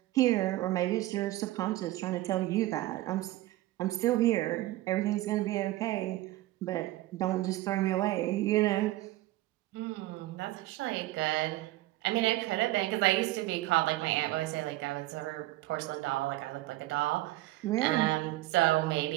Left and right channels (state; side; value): quieter; left; 17.1 dB